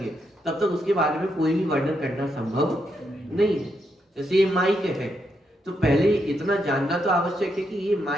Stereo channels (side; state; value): both; normal; correlation 0.80